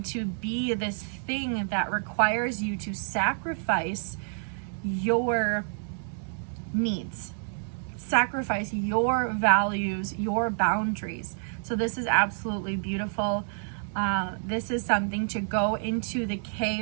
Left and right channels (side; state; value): left; silent; 59 dB below the other